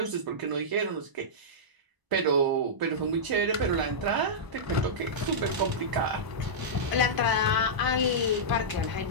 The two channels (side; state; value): left; late; 1.0 ms